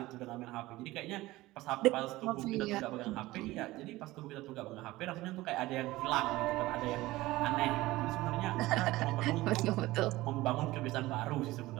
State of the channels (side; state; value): left; quieter; 18.4 dB